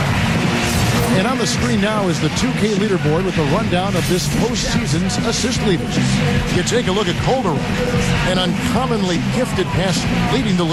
And on the screen now is the 2K leaderboard with the rundown of this postseason's assist leaders. You take a look at Calderon, an uncommonly gifted passer, leading the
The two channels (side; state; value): both; identical; correlation 1.00